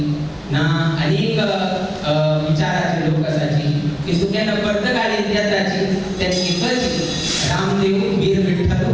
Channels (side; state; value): both; identical; correlation 1.00